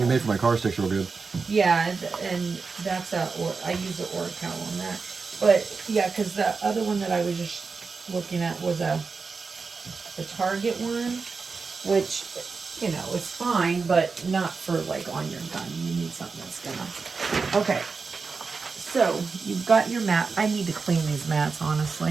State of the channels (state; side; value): quieter; left; 4.7 dB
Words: you made for my car sticks real good. Yeah, and that's I use the Oracal on that. But yeah, because the other one that I was just looking at was a Target one, which, you know, it's fine, but not for like on your gun. You need something that's gonna. Okay. So you've got your mat. I need to clean these mats,